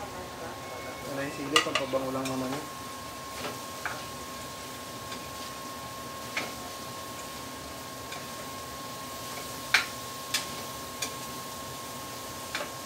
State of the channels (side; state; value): both; identical; correlation 1.00